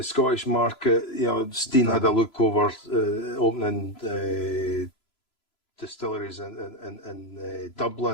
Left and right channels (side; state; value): right; late; 3.0 ms